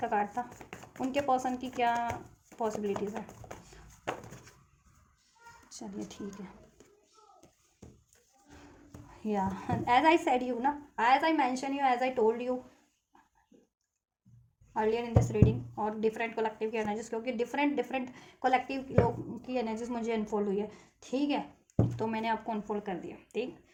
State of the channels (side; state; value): both; identical; correlation 1.00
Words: कार्ड था, उनके पर्सन की क्या पॉसिबिलिटीज़ है। चलिए ठीक है, या एज आई सेड यू ना, as I mention you, as I told you earlier in this reading, और डिफरेंट कलेक्टिव की एनर्जीज, क्योंकि डिफरेंट कलेक्टिव लोग की एनर्जीज मुझे अनफोल्ड हुई है, ठीक है, तो मैंने आपको अनफोल्ड कर दिया। ठीक,